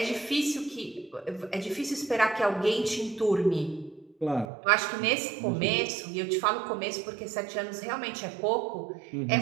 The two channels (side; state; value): left; drops out; at 4.5 s